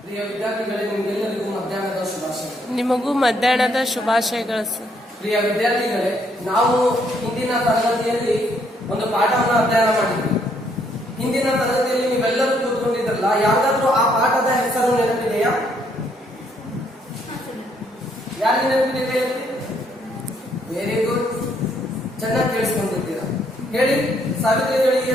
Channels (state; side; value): normal; both; correlation 0.70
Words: ಪ್ರಿಯ ವಿದ್ಯಾರ್ಥಿಗಳೇ, ನಿಮಗೆಲ್ಲರಿಗೂ ಮಧ್ಯಾಹ್ನದ ಶುಭಾಶಯಗಳು. ನಿಮಗೂ ಮಧ್ಯಾಹ್ನದ ಶುಭಾಶಯಗಳು ಸರ್. ಪ್ರಿಯ ವಿದ್ಯಾರ್ಥಿಗಳೇ, ನಾವು ಹಿಂದಿನ ತರಗತಿಯಲ್ಲಿ ಒಂದು ಪಾಠವನ್ನು ಅಧ್ಯಯನ ಮಾಡಿದ್ವಿ. ಹಿಂದಿನ ತರಗತಿಯಲ್ಲಿ ನೀವೆಲ್ಲರೂ ಕೂತ್ಕೊಂಡಿದ್ರಲ್ಲ, ಯಾವ್ದಾದ್ರೂ ಆ ಪಾಠದ ಹೆಸರು ನೆನಪಿದೆಯಾ? ಯಾರಿಗೆ ನೆನಪಿದೆ? ವೆರಿ ಗುಡ್, ಚೆನ್ನಾಗಿ ಕೇಳಿಸ್ಕೊಂಡಿದ್ದೀರಾ. ಹೇಳಿ, ಸಾವಿತ್ರಿ ಗಳಿಗೆ